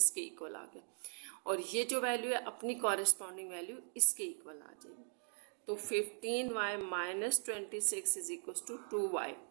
इक्वल आ गए। और ये जो वैल्यू है अपनी कॉरेस्पॉन्डिंग वैल्यू इसके इक्वल आ जाएगी। तो 15y minus 26 is equals to 2y।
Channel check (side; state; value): left; silent; 51 dB below the other